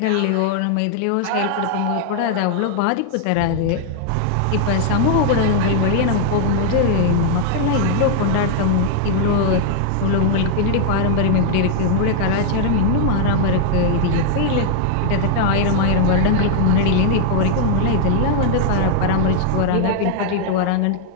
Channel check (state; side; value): different; both; correlation 0.00